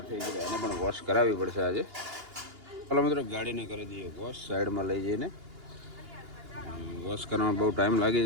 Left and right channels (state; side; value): late; left; 2.8 ms